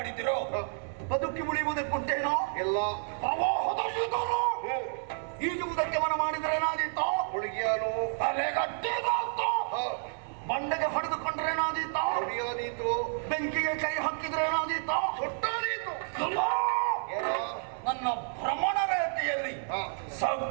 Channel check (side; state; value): left; silent; 58 dB below the other